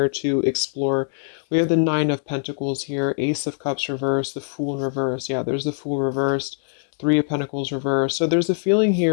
to explore. We have the Nine of Pentacles here, Ace of Cups reversed, the Fool in reverse. Yeah, there's the Fool reversed, Three of Pentacles reversed. So there's a feeling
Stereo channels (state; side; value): silent; right; 62 dB below the other